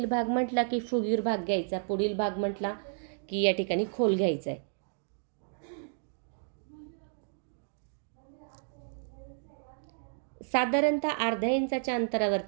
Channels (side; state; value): left; silent; digital silence